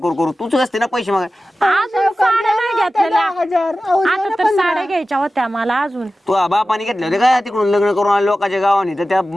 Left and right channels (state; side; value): normal; both; correlation 0.95